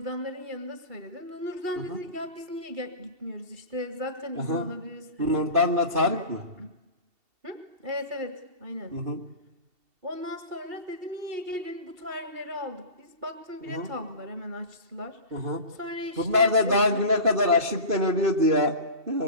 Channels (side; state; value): left; late; 2.7 ms